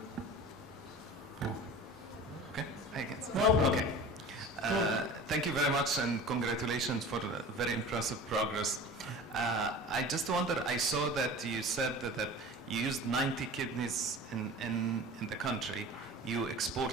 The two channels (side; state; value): both; normal; correlation 0.38